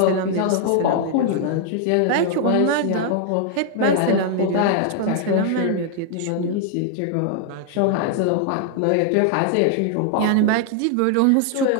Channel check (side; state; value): both; different; correlation 0.00